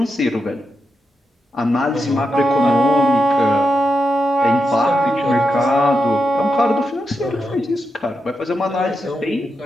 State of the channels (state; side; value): normal; both; correlation 0.86